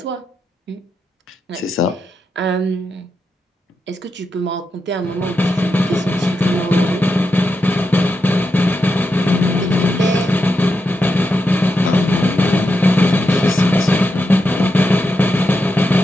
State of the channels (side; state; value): both; normal; correlation 0.86